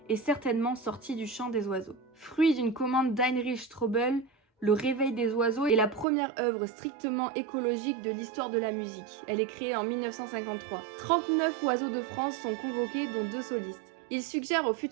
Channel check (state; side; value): drops out; left; at 6.1 s